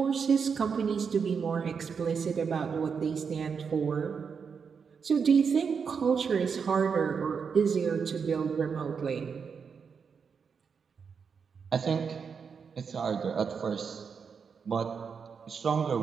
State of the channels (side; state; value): left; quieter; 6.1 dB